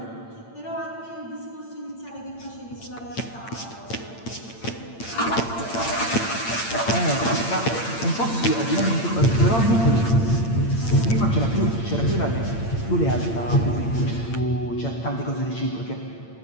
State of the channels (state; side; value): late; right; 8.8 ms